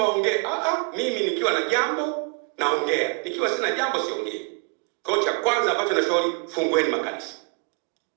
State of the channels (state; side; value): quieter; left; 38.4 dB